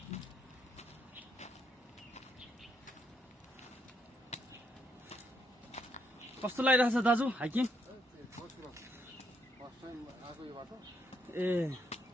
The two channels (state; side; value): normal; both; correlation 0.76